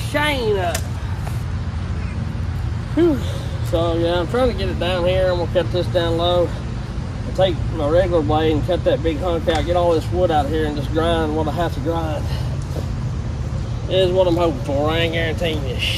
chain up. Whew. So yeah, I'm trying to get it down here. I'm gonna cut this down low. I'll take my regular blade and cut that big hunk out, get all this wood out of here and just grind what I have to grind. Is what I'm hoping for. I ain't guaranteeing you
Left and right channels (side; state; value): both; identical; correlation 1.00